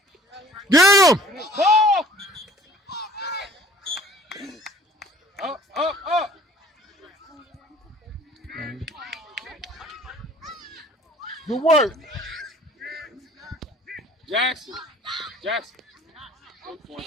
Get him. Ball. Up. Good work. Jackson.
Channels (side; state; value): both; normal; correlation 0.52